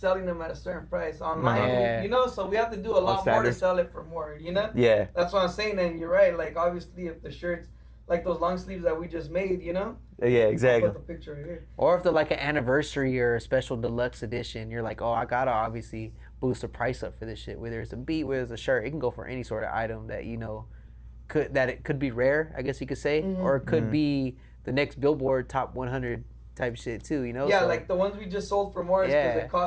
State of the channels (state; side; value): identical; both; correlation 1.00